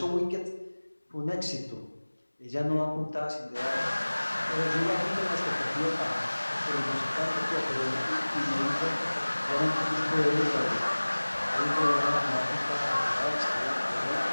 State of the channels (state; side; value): inverted; both; correlation -1.00